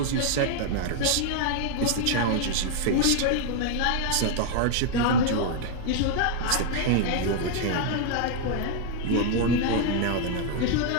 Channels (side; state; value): both; different; correlation 0.00